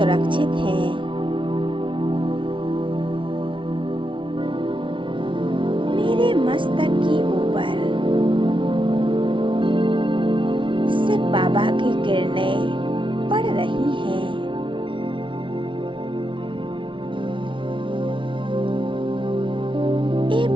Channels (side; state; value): left; late; 0.25 ms